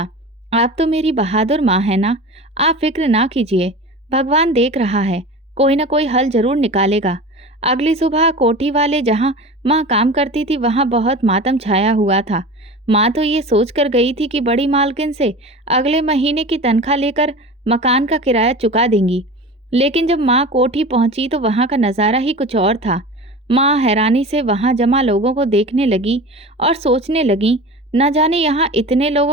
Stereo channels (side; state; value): both; normal; correlation 0.33